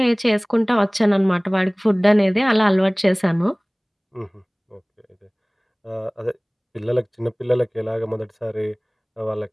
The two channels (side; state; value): both; identical; correlation 1.00